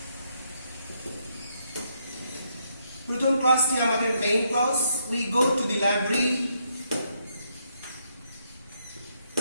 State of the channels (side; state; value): both; inverted; correlation -0.76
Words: প্রথম ক্লাসটি আমাদের main class, we go to the library